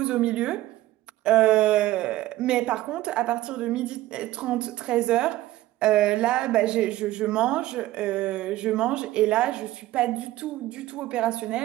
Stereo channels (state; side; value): quieter; left; 15.9 dB